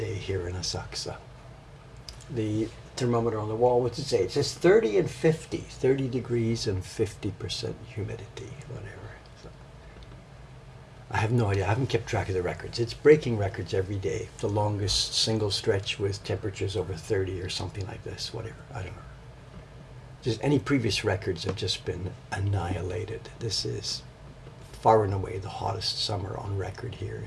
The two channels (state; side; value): identical; both; correlation 1.00